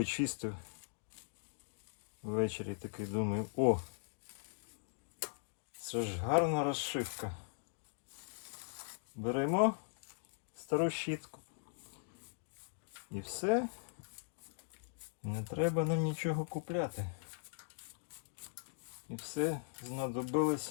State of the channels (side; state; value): right; silent; digital silence